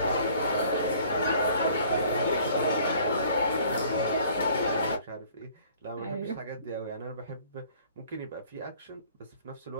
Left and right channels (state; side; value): inverted; both; correlation -0.54